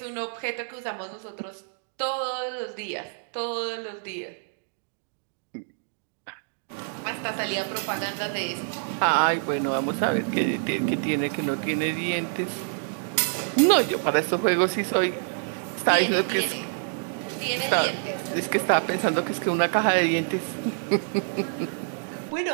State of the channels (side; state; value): left; silent; digital silence